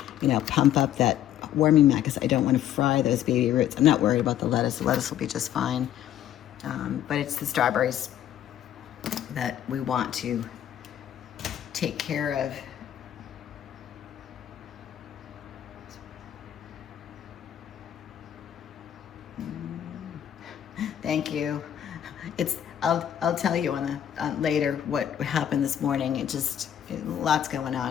pump up that warming mat because I don't want to fry those baby roots. I'm not worried about the lettuce. The lettuce will be just fine. But it's the strawberries that we want to take care of. Thank you. I'll tell you on the later what happened this morning. Lots going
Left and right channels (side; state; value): right; quieter; 10.8 dB